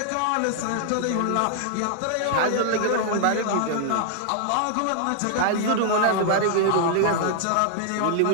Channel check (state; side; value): different; both; correlation 0.00